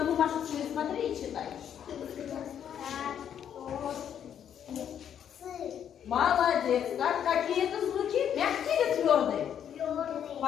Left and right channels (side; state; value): right; quieter; 9.1 dB